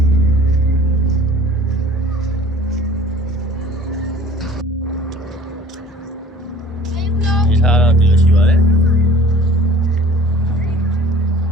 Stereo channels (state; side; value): normal; both; correlation 0.49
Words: ဒီထားတော့ဒီလိုရှိပါတယ်